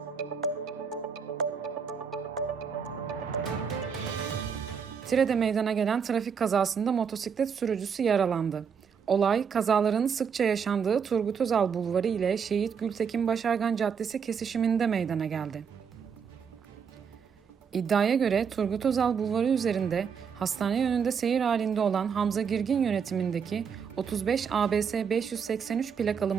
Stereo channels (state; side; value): quieter; left; 6.7 dB